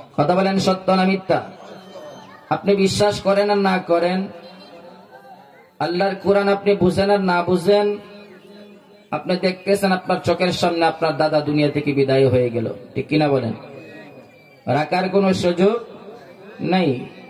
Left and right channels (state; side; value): identical; both; correlation 1.00